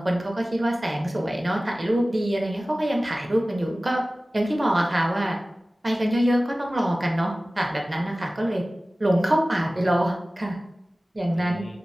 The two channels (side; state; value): both; normal; correlation 0.97